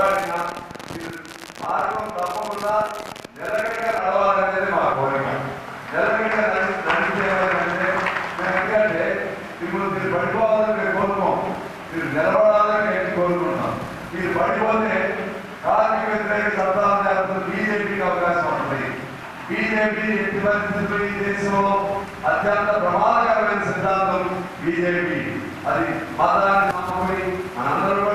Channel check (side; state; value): both; identical; correlation 1.00